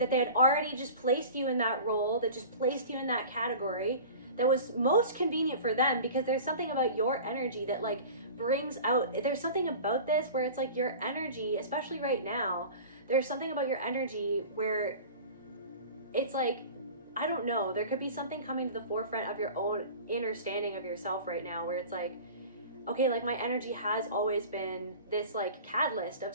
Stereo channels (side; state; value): both; inverted; correlation -0.38